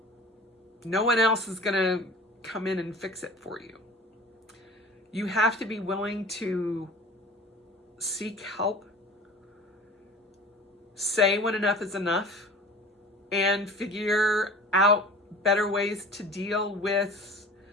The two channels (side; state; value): both; normal; correlation 0.40